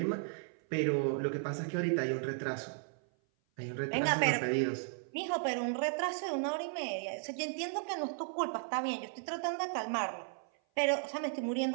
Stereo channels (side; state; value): left; silent; 54 dB below the other